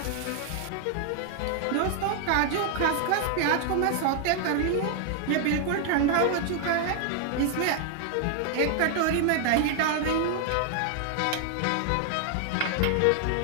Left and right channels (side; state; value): both; different; correlation 0.00